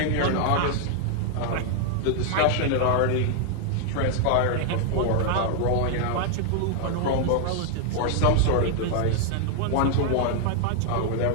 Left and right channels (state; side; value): different; both; correlation 0.00